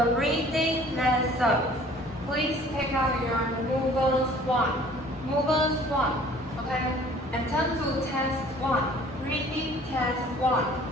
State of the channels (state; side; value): normal; both; correlation 0.52